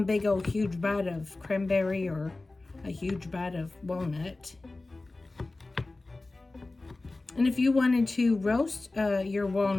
big old huge bite of cranberry or a huge bite of walnut. And if you wanted to roast your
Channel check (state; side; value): quieter; right; 3.2 dB